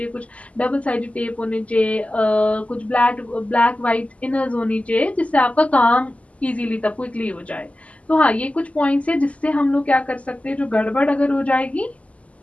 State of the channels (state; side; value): late; right; 0.067 ms